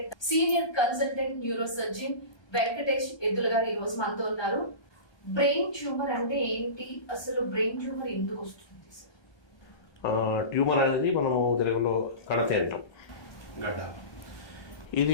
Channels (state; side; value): late; right; 1.2 ms